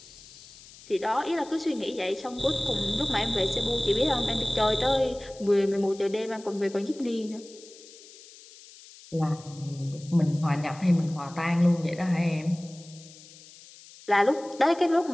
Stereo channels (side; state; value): left; noise; hiss, 21 dB below the sound